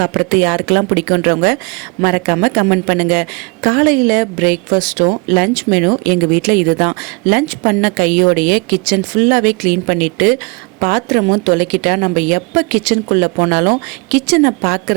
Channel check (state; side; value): quieter; left; 30.0 dB